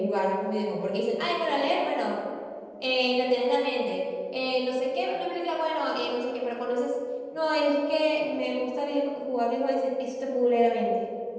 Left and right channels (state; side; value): identical; both; correlation 1.00